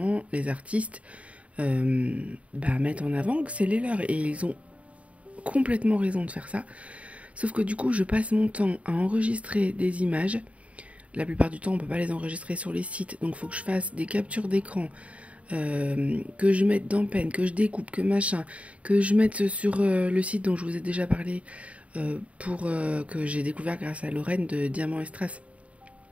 les artistes mettent en avant que c'est les leurs. Et ils ont complètement raison de faire ça. Sauf que du coup, je passe mon temps à enregistrer des images. La plupart du temps, on ne peut pas les enregistrer sur les sites. Donc, il faut que je fasse des captures d'écran, que je mette dans Pen, que je découpe, que machin, que je mette sur le site dont je vous ai déjà parlé, que j'ai découvert grâce à Lorraine de Diamant et Strass.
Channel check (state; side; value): late; left; 0.065 ms